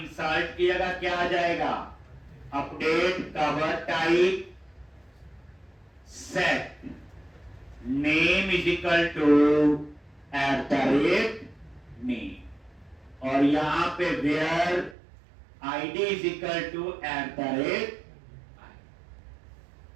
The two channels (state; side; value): drops out; left; at 15.0 s